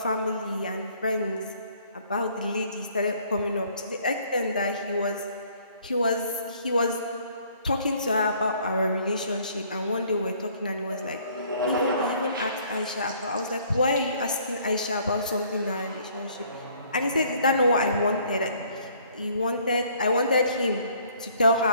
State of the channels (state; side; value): inverted; both; correlation -0.60